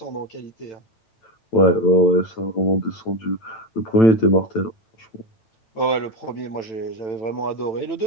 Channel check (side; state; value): right; late; 9.0 ms